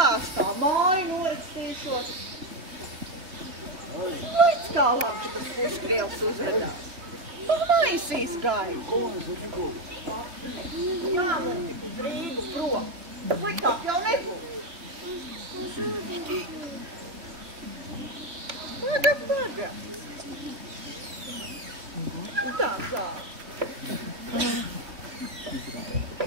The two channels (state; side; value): late; left; 3.0 ms